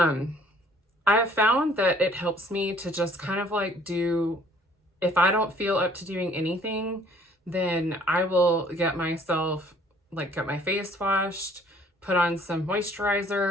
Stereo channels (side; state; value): both; normal; correlation 0.58